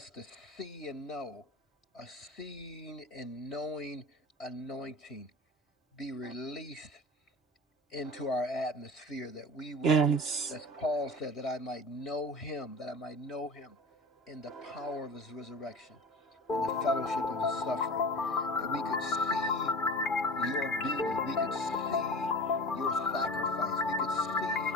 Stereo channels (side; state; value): both; normal; correlation 0.35